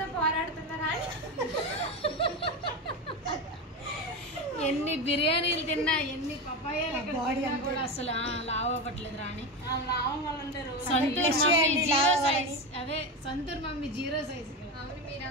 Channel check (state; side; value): normal; both; correlation 0.19